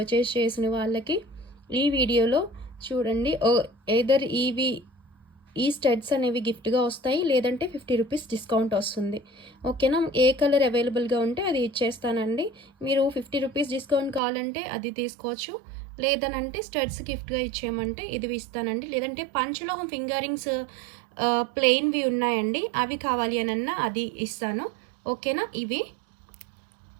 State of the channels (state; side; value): drops out; left; at 14.2 s